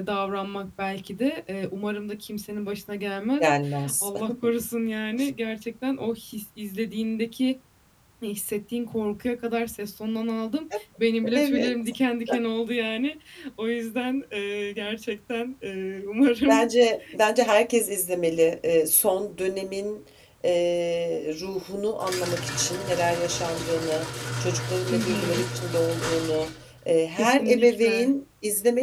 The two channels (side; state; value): both; identical; correlation 1.00